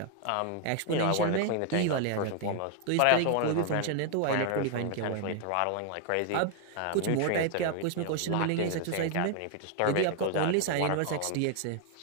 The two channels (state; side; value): different; both; correlation 0.00